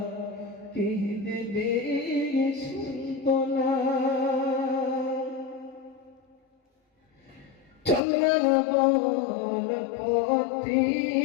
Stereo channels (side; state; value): right; drops out; at 8.0 s